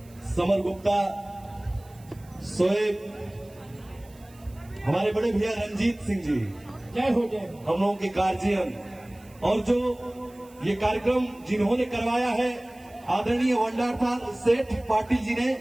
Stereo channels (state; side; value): noise; right; hiss, 27 dB below the sound